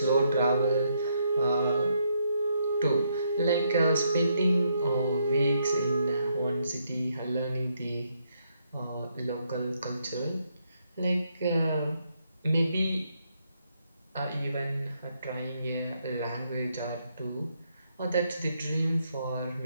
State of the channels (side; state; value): both; inverted; correlation -0.75